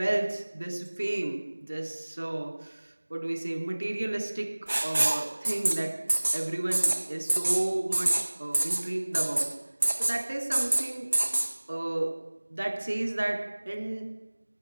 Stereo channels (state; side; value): inverted; both; correlation -1.00